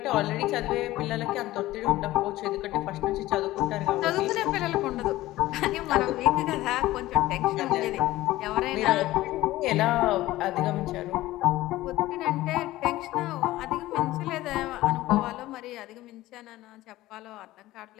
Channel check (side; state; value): right; quieter; 16.7 dB